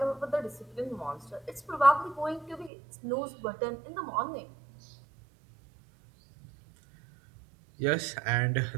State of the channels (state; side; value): drops out; left; at 2.7 s